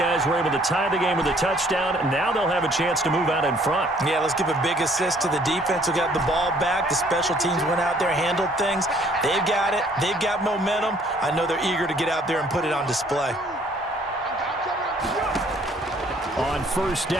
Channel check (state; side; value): normal; both; correlation 0.60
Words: were able to tie the game with a touchdown, and now they'll have a chance to move out in front. Yeah, let's give a big assist to the defense who got the ball back. The special teams went out there, handled things. They've got it. They've got momentum. I know they're eager to get out there and put it on display. On 1st